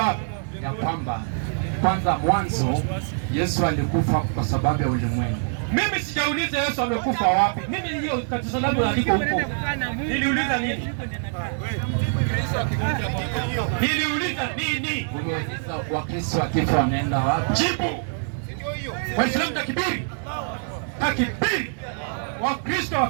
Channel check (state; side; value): silent; left; 58 dB below the other